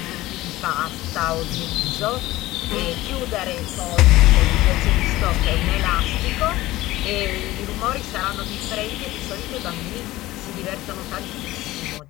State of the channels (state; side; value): quieter; right; 17.3 dB